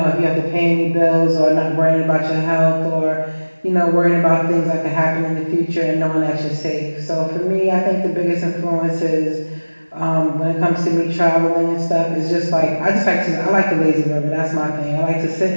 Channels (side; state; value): both; inverted; correlation -1.00